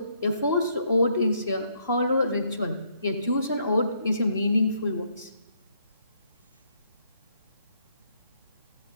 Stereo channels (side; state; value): both; inverted; correlation -0.72